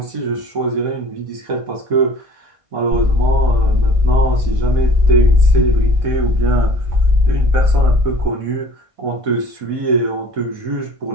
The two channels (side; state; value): left; late; 1.5 ms